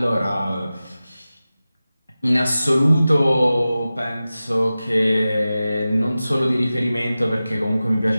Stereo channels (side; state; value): both; inverted; correlation -0.95